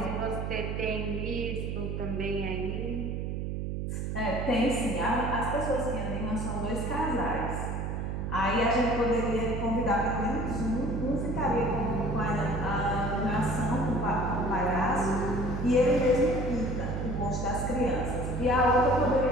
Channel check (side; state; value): right; noise; hum, 3 dB below the sound